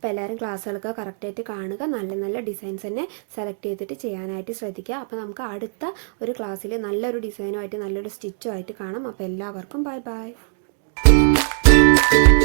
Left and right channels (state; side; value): silent; left; digital silence